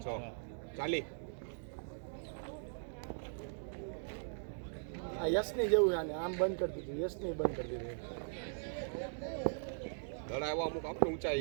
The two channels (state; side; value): silent; left; digital silence